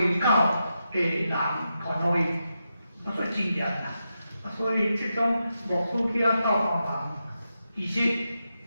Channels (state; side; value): inverted; both; correlation -0.87